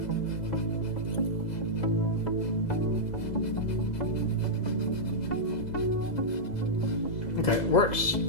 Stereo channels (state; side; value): late; right; 2.0 ms